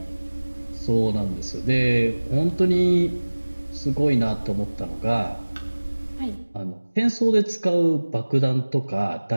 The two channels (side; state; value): both; inverted; correlation -1.00